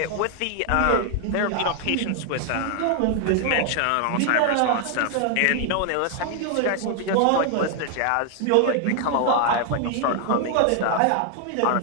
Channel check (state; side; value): different; both; correlation 0.00